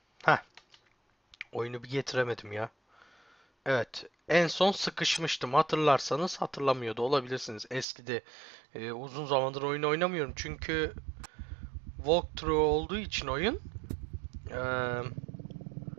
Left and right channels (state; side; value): drops out; left; at 7.9 s